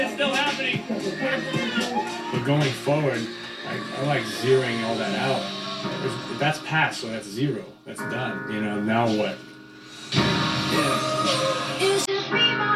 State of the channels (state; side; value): identical; both; correlation 1.00